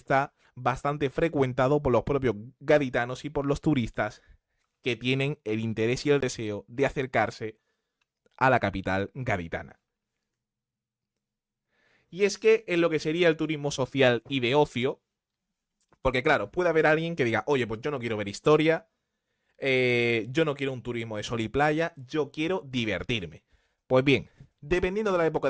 bastante frecuentado por los propios gaditanos y por los turistas que tienen el interés y el deseo de acercarse a la capital gaditana. Y es que en lo que sería el turismo social y de ocio, porque claro, puede haber alguien que diga, oye, pues yo no quiero ver historia, yo no quiero un turismo de sol y playa, yo quiero divertirme. Pues bien, dependiendo de la época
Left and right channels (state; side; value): identical; both; correlation 1.00